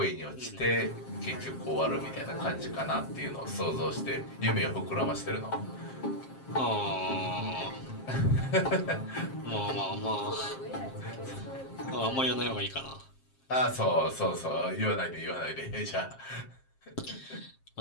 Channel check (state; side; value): late; right; 7.5 ms